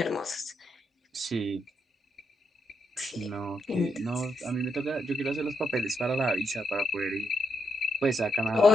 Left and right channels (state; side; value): normal; both; correlation 0.81